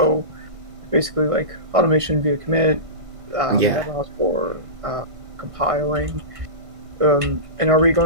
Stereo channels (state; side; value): late; left; 1.5 ms